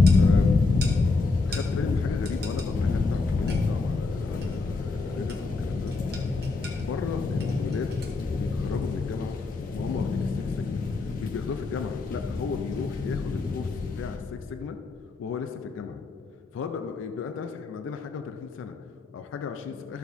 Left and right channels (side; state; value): right; quieter; 3.8 dB